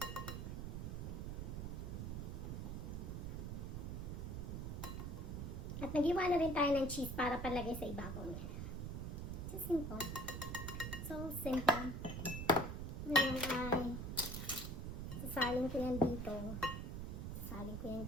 At nag-iwa na rin tayo ng cheese para palagay sa ibabaw niya. So simple. So simple. Ngayon ay sasalin ko yan dito. Sasalin ko yan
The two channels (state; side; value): noise; right; rumble, 4 dB below the sound